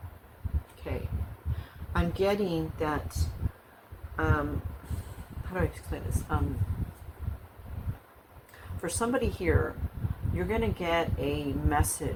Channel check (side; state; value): both; identical; correlation 1.00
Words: Okay. I'm getting that, how do I explain this? For somebody here, you're going to get a